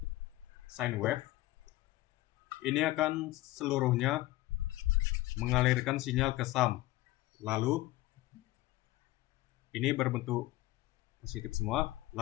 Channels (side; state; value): right; quieter; 17.6 dB